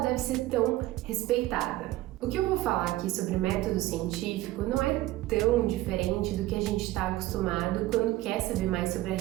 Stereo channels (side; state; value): left; quieter; 16.6 dB